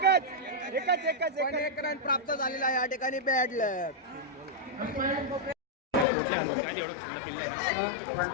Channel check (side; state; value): right; drops out; at 6.1 s